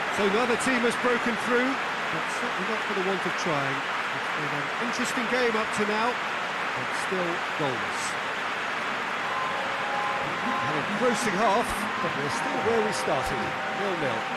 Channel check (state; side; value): identical; both; correlation 1.00